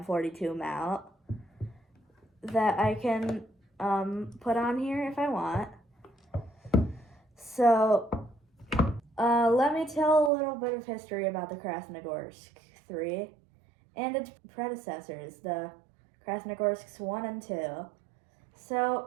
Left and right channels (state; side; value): drops out; left; at 10.3 s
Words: mount that I can put on here if I want. So let me tell a little bit of history about the Krasnogorsk 3 and its predecessors, the Krasnogorsks 1 and 2.